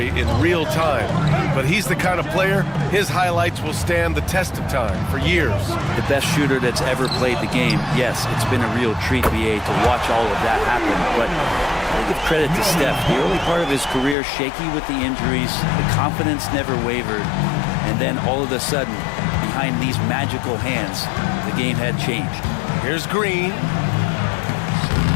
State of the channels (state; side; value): drops out; right; at 14.2 s